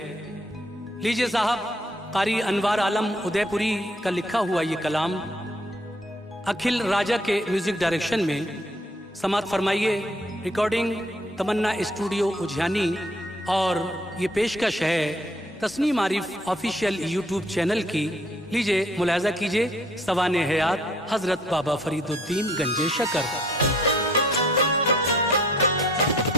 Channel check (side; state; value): both; normal; correlation 0.62